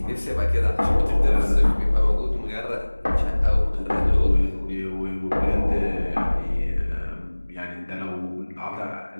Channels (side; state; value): both; inverted; correlation -1.00